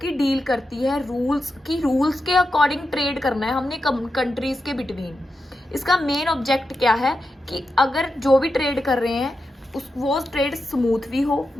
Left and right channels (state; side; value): normal; both; correlation 0.89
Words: डील करती है रूल्स के अकॉर्डिंग ट्रेड करना है हमने कंट्रीज के बिटवीन। इसका मेन ऑब्जेक्ट क्या है कि अगर जो भी ट्रेड कर रहे हैं वो ट्रेड स्मूथ भी हो,